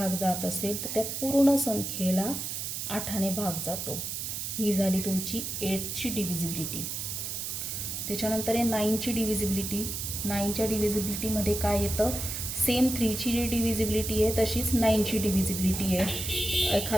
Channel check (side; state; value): right; noise; hiss, 4 dB below the sound